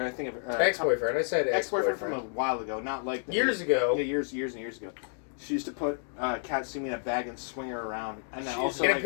think of Ex-boyfriend. I said ex-boyfriend ex-boyfriend. from a while ago, not like Years ago. Yeah, years and years ago. She used to put Katsumi in a bag and swing her around, and then also In a like,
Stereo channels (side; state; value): right; silent; digital silence